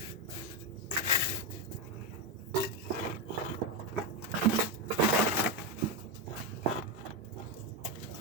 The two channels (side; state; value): both; normal; correlation 0.09